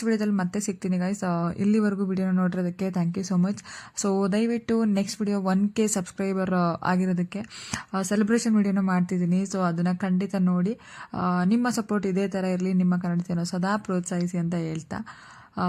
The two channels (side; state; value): both; identical; correlation 1.00